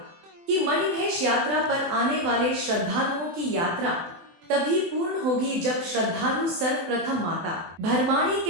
कि मणिमहेश यात्रा पर आने वाले श्रद्धालुओं की यात्रा तभी पूर्ण होगी जब श्रद्धालु सर्वप्रथम माता भरमाणी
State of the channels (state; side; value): late; left; 24 ms